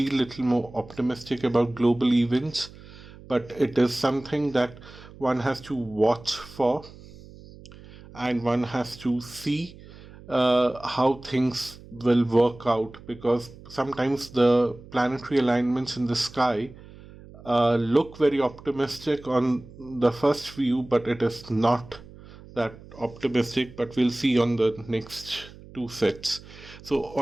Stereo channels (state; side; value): noise; right; hum, 19 dB below the sound